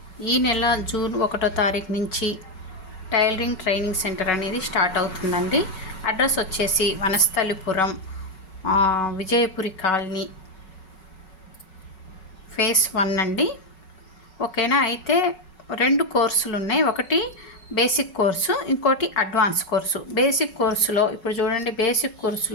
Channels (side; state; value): right; late; 5.4 ms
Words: ఈ నెల జూన్ 1వ తారీఖు నుంచి టైలరింగ్ ట్రైనింగ్ సెంటర్ అనేది స్టార్ట్ అవుతుందండి. అడ్రస్ వచ్చేసి వనస్థలిపురం, విజయపురి కాలనీ, ఫేస్ 1 అండి. ఓకేనా. అయితే 2 కోర్సులు ఉన్నాయి. ఒకటి బేసిక్ కోర్సు, ఇంకోటి అడ్వాన్స్ కోర్సు. బేసిక్ కోర్సులో ఇప్పుడు చూడండి, బేసిక్